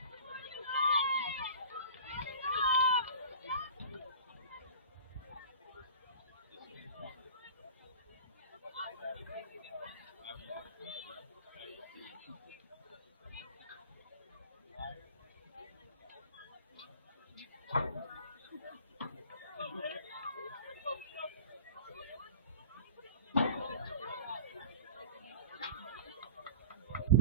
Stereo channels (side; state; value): both; inverted; correlation -0.37